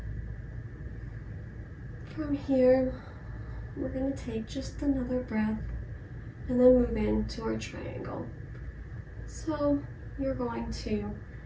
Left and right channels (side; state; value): both; identical; correlation 1.00